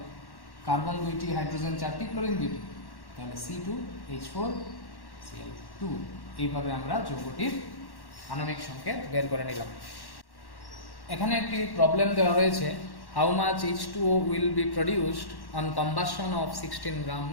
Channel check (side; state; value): right; late; 1.1 ms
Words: কার্বন 2টি, হাইড্রোজেন 4টি, ক্লোরিন 2টি, তাহলে C2H4Cl2। এইভাবে আমরা যৌগটির আণবিক সংকেত বের করে নিলাম। এখানে একটি প্রবলেম দেওয়া রয়েছে, how much H2O will be produced on combustion of 16 gram